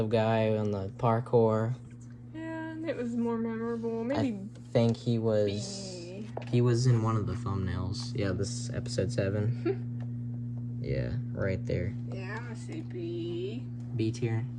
guy on the parkour. Yeah, it was more memorable. Maybe I think he was... He was in one of the thumbnails. Yeah, this is episode 7. Yeah, right there. Yeah, I'm gonna say B. B tier.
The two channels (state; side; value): identical; both; correlation 1.00